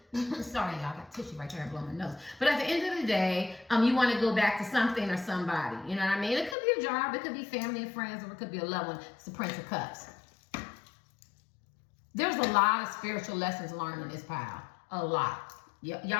Sorry, y'all, I got tissue right there and blowing my nose. But at the end of the day, you want to go back to something or somebody. You know what I mean? It could be a job, it could be family and friends, or it could be a loved one. It's the Prince of Cups. There's a lot of spiritual lessons learned in this pile. A lot.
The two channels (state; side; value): drops out; right; at 6.6 s